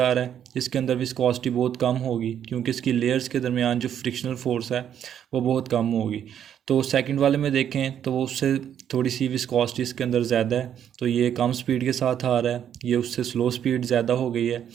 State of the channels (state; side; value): quieter; left; 9.5 dB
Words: रहा है, इसके अंदर विस्कोसिटी बहुत कम होगी क्योंकि इसकी लेयर्स के दरमियान जो फ्रिक्शनल फोर्स है वो बहुत कम होगी। तो सेकंड वाले में देखें तो वो उससे थोड़ी सी विस्कोसिटी इसके अंदर ज़्यादा है, तो ये कम स्पीड के साथ आ रहा है, ये उससे स्लो स्पीड ज़्यादा हो गई है।